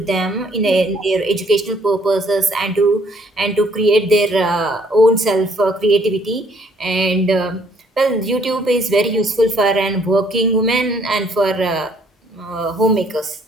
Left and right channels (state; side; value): normal; both; correlation 0.64